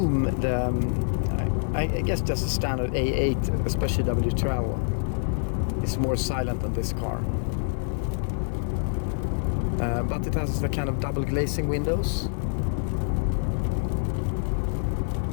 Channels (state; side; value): silent; right; digital silence